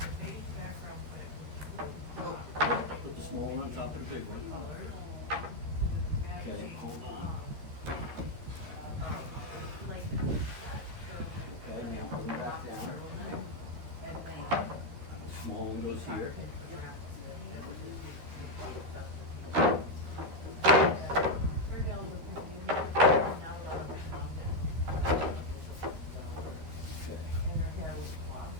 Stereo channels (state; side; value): late; left; 13 ms